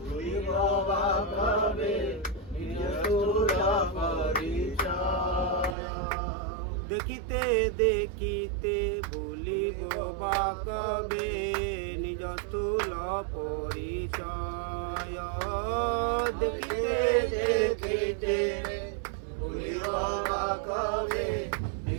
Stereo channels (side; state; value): left; drops out; at 5.8 s